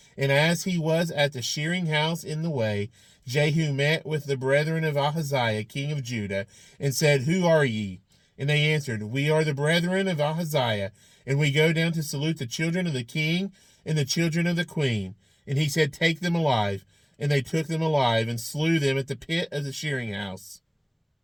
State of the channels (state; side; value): identical; both; correlation 1.00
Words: And as he was at the shearing house in the way, Jehu met with the brethren of Ahaziah, king of Judah, and said, Who are ye? And they answered, We are the brethren of Ahaziah, and we go down to salute the children of the king and the children of the queen. And he said, Take them alive. And they took them alive, and slew them at the pit of the shearing house,